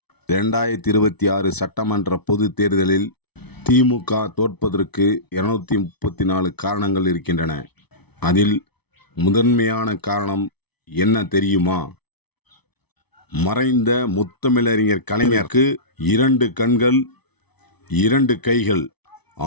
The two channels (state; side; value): late; right; 0.99 ms